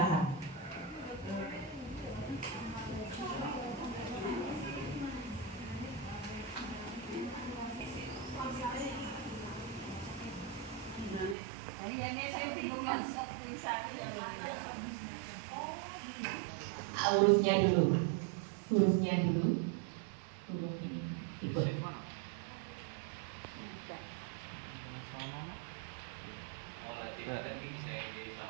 Ini saya bingung masuk tulisannya yang mana. Hurufnya dulu. Hurufnya dulu. Huruf ini. Ikut.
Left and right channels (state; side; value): drops out; left; at 11.4 s